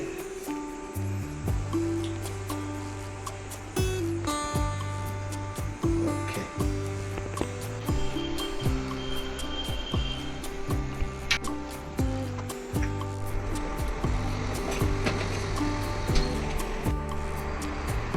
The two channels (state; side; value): identical; both; correlation 1.00